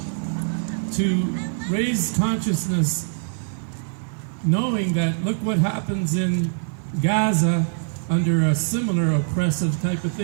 to raise consciousness, knowing that look what happens in Gaza under a similar oppressive type of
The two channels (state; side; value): silent; left; 57 dB below the other